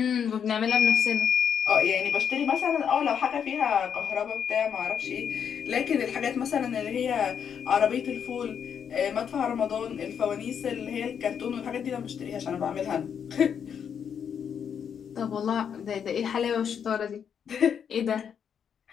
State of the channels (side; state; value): right; quieter; 7.7 dB